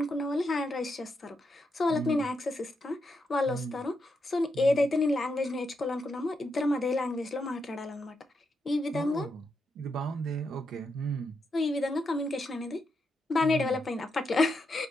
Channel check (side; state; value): both; normal; correlation 0.83